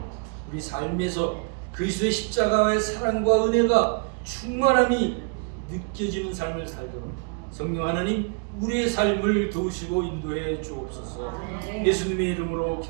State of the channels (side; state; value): left; quieter; 39.7 dB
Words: 우리 삶에서 그리스도의 십자가의 사랑과 은혜가 충만함이 느껴지는 삶을 살도록 성령 하나님 우리의 삶을 도우시고 인도해 주옵소서. 예수님의 이름으로